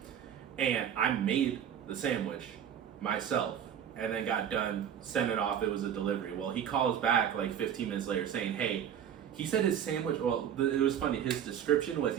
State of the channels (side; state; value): left; quieter; 9.1 dB